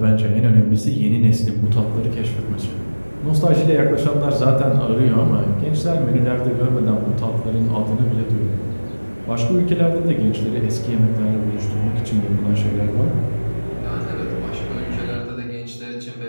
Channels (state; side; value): inverted; both; correlation -1.00